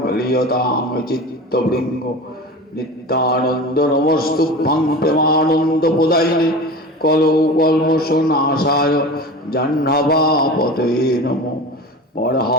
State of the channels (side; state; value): both; normal; correlation 0.32